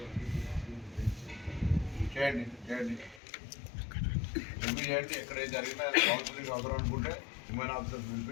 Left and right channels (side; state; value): right; drops out; at 3.2 s